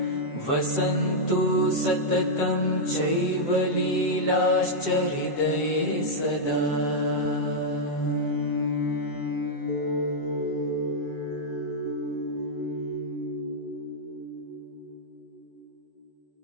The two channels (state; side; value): late; right; 7.8 ms